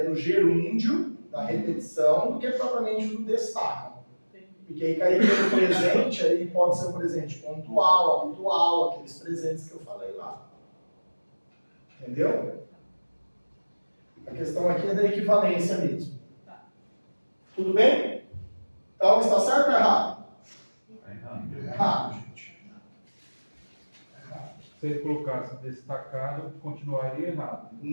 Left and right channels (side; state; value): both; inverted; correlation -1.00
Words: do gerúndio, da repetição, do que propriamente do destaque. Porque aí cairia no presente, aí pode ser um presente pontual, habitual, aqueles presentes que eu falei lá. Entendeu? A questão aqui é da equivalência mesmo. Tudo bem? Então, está certo ou errado? Errado, gente. Errado. Se ele colocasse destacado, continuaria errado.